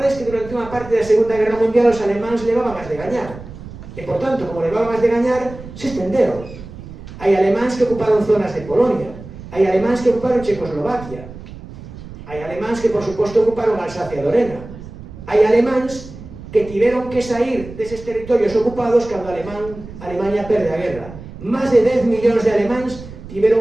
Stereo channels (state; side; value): noise; right; rumble, 15 dB below the sound